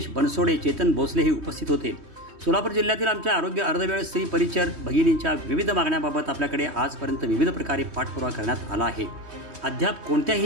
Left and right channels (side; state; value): left; late; 3.1 ms